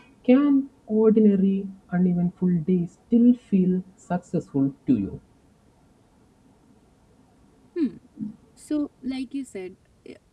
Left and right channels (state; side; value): identical; both; correlation 1.00